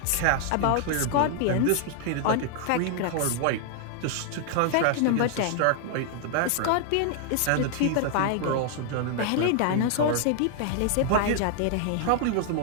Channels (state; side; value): different; both; correlation 0.00